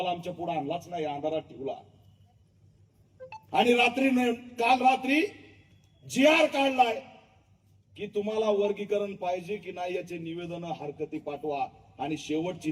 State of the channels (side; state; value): both; identical; correlation 1.00